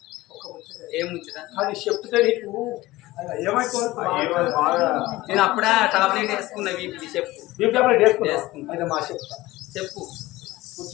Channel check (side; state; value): right; quieter; 18.4 dB